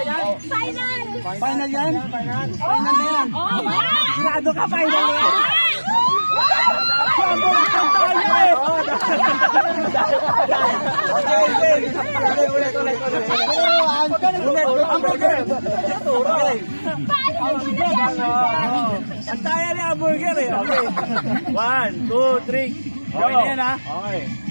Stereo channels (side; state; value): both; inverted; correlation -1.00